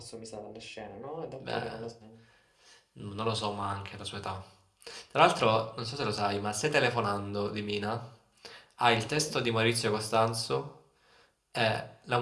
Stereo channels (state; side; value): identical; both; correlation 1.00